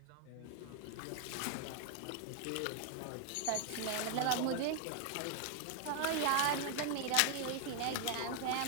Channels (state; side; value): different; both; correlation 0.00